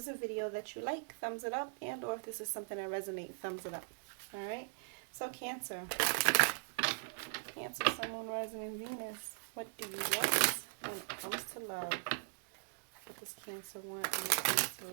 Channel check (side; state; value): left; silent; digital silence